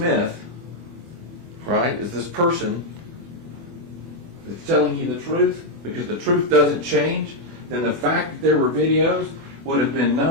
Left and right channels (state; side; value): late; left; 24 ms